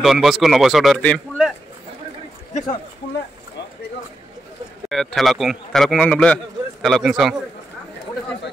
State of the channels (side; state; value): both; normal; correlation 0.87